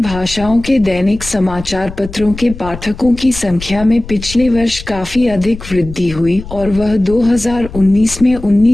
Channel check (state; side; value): noise; left; rumble, 12 dB below the sound